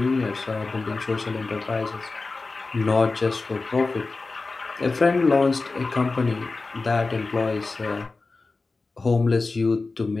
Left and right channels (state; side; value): quieter; right; 3.7 dB